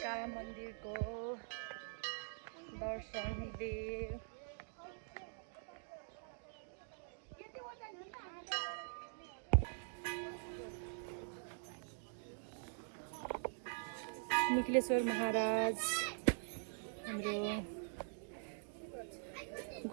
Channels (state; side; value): silent; left; digital silence